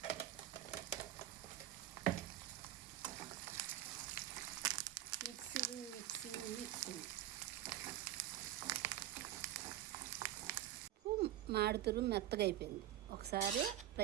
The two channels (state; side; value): quieter; left; 13.0 dB